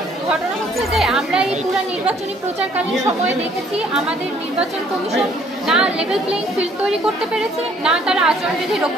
ঘটনা হচ্ছে যে আমরা এই পুরো নির্বাচনী প্রচারকালীন সময়ে দেখেছি আমাদের নির্বাচন কমিশন না লেভেল প্লেইং ফিল্ড তৈরি করতে পেরেছে, না তারা আচরণবিধি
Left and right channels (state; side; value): normal; both; correlation 0.62